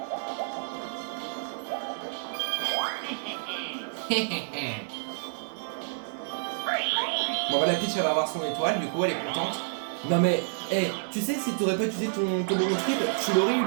Bon bah la Peach elle va avoir son étoile, du coup elle est contente. Non mais, hey, tu sais si t'aurais pas utilisé ton bonbon triple, tu l'aurais eu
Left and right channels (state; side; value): silent; left; digital silence